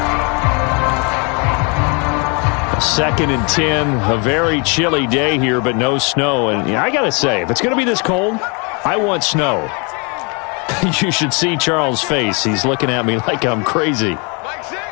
Second and 10, a very chilly day here, but no snow. And I got to say, if it's going to be this cold, I want snow. You should see Charles' face. He's looking at me like I'm crazy.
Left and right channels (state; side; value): quieter; right; 33.3 dB